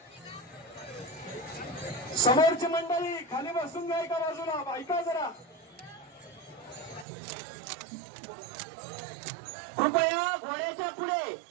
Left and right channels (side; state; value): left; drops out; at 7.1 s